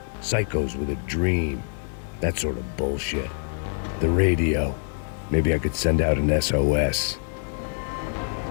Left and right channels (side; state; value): right; silent; digital silence